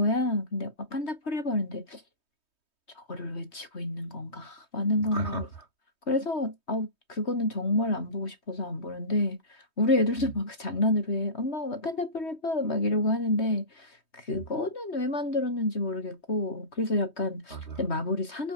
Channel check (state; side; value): late; right; 3.2 ms